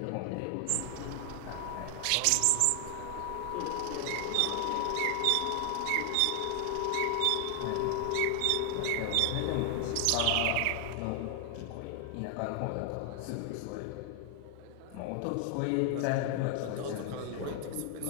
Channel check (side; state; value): both; different; correlation 0.00